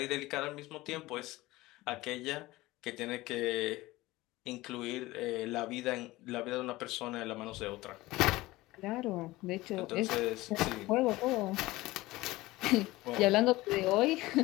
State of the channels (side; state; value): right; quieter; 19.1 dB